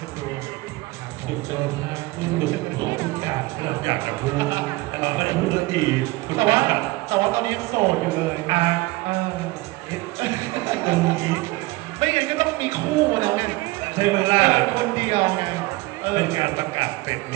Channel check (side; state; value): left; quieter; 21.4 dB